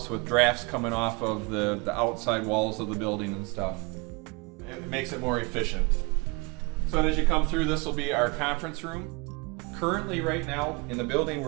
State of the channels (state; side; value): quieter; left; 28.5 dB